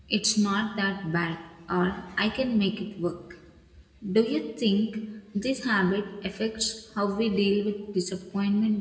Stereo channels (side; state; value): both; identical; correlation 1.00